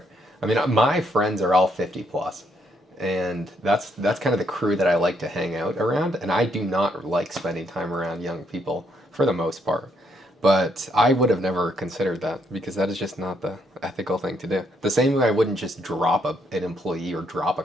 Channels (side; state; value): both; normal; correlation 0.73